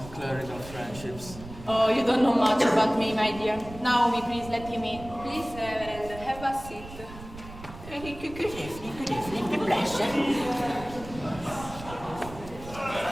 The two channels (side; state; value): right; noise; rumble, 15 dB below the sound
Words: clerical friendships. Oh, you don't know much about me, my dear. Naomi, please let him in. Please, Reverend, have a seat. Good evening, the pleasure.